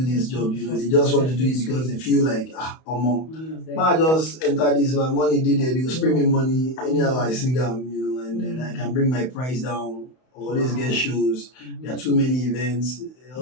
this job. You know, they just want to do it because they feel like I just enter this, my money did it, they will spray me money anyhow I sing them, you know, and then I can bring my price down, always get shows. There are too many events,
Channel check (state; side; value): late; right; 31 ms